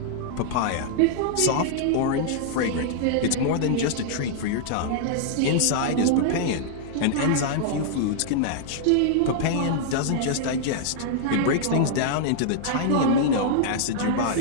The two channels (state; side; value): different; both; correlation -0.01